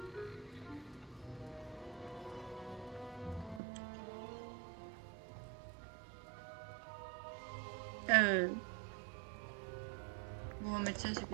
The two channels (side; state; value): left; drops out; at 3.6 s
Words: Bon, on va mettre ça, c'est